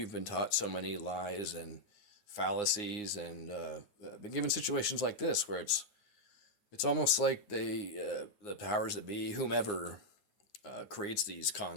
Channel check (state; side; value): late; right; 9.7 ms